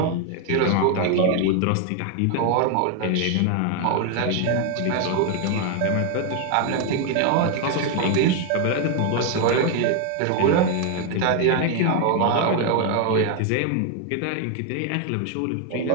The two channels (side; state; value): both; different; correlation 0.00